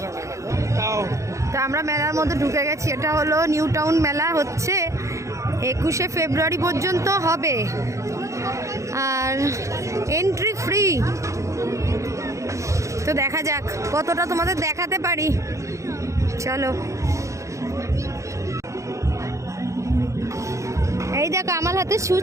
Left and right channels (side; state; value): left; late; 0.15 ms